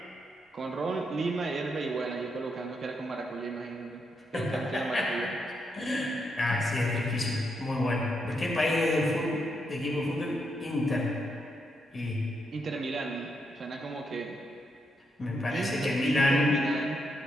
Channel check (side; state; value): both; normal; correlation 0.80